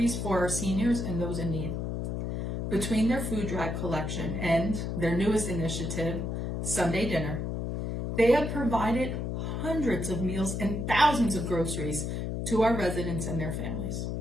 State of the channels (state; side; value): noise; left; hum, 2 dB below the sound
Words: for our seniors and those in need. Between their food drive collection and their newest initiative, Sunday Dinner, they have provided hundreds of meals and thousands of groceries to our residents and their families.